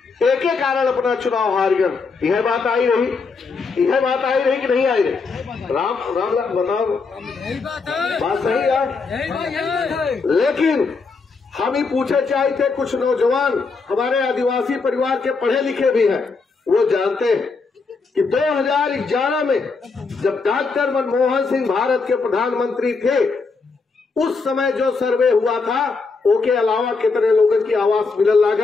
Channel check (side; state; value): right; quieter; 4.5 dB